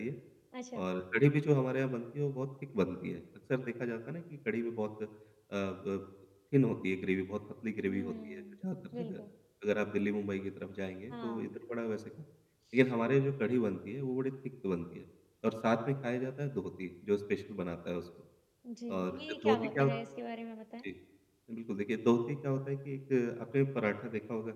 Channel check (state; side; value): identical; both; correlation 1.00